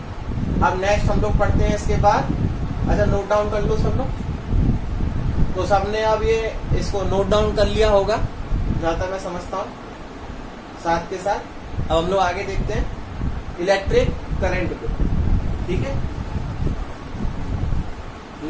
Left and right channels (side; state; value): both; identical; correlation 1.00